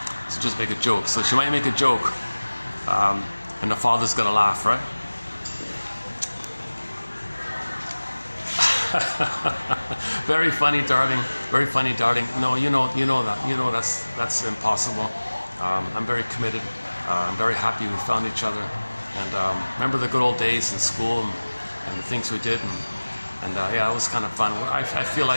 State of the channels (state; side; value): inverted; both; correlation -1.00